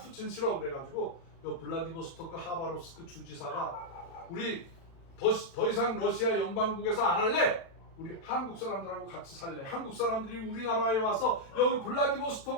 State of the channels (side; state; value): right; late; 36 ms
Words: 싫어 그래가지고 요 블라디보스토크 하바롭스크 주지사가 우리 더 이상 러시아 연방국에서 안 할래. 우리 한국 사람들하고 같이 살래. 한국 사람들이 우리나라에 와서 여기